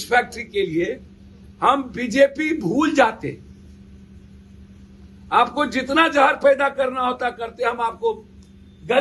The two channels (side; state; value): both; identical; correlation 1.00